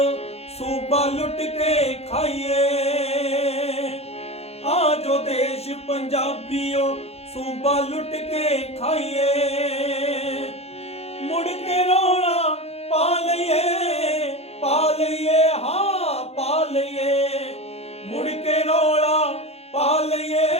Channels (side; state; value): right; late; 0.30 ms